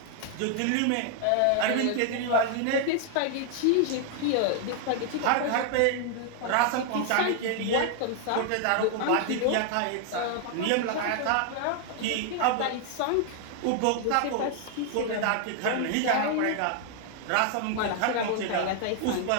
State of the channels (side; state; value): both; different; correlation 0.00